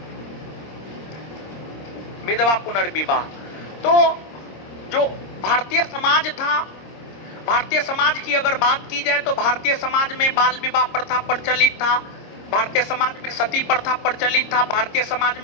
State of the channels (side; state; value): right; late; 26 ms